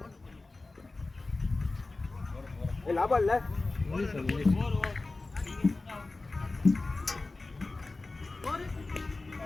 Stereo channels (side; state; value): right; quieter; 3.3 dB